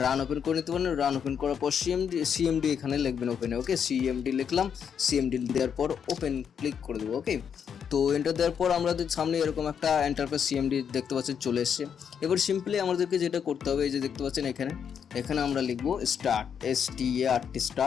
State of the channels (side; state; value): right; quieter; 7.6 dB